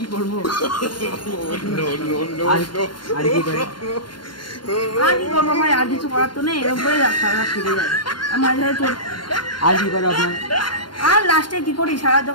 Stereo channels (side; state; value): right; late; 0.72 ms